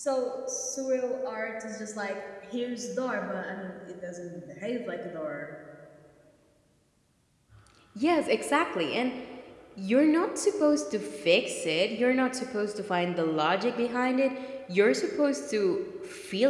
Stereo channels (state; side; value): identical; both; correlation 1.00